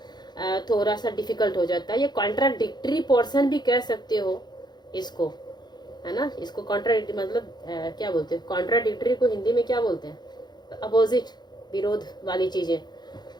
थोड़ा सा डिफिकल्ट हो जाता है। ये कॉन्ट्राडिक्टरी पोर्शन भी कह सकते हो इसको, है ना, इसको कॉन्ट्राडिक्टरी मतलब क्या बोलते हैं, कॉन्ट्राडिक्टरी को हिंदी में क्या बोलते हैं, अपोजिट, विरोध वाली चीजें।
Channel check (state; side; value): late; right; 0.21 ms